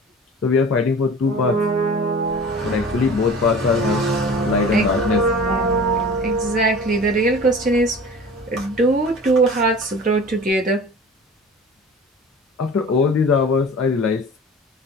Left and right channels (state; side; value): normal; both; correlation 0.40